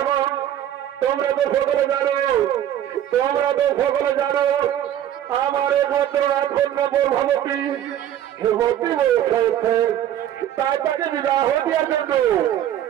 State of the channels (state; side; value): quieter; left; 11.2 dB